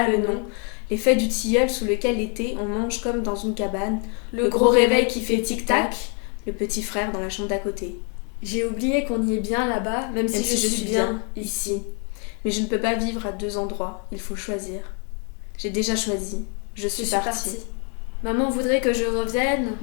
le nom, les feuilles du tilleul sous lequel l'été on mange comme dans une cabane, le gros réveil qui fait tic-tac, le petit frère dans la chambre d'à côté. J'ai oublié qu'on y est bien là-bas, même si je suis bien ici. Mais je ne peux pas vivre à deux endroits, il faut choisir. J'ai déjà choisi, je suis partie. Maman voudrait que je revienne,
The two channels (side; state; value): right; quieter; 38.6 dB